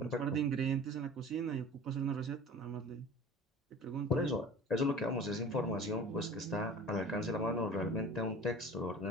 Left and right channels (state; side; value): normal; both; correlation 0.40